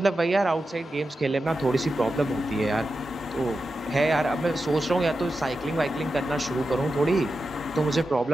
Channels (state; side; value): normal; both; correlation 0.91